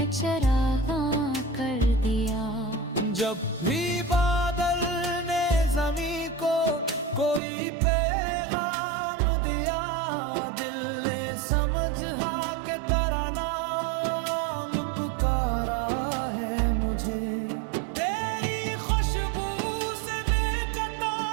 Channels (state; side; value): drops out; left; at 7.4 s